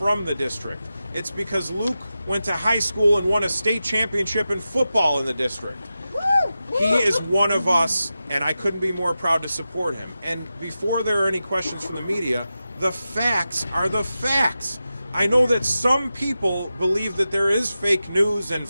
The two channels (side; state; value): both; inverted; correlation -0.92